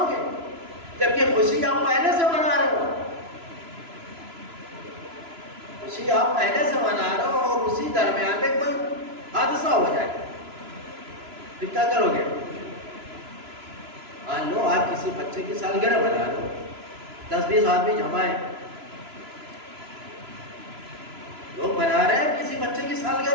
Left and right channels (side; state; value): left; late; 3.0 ms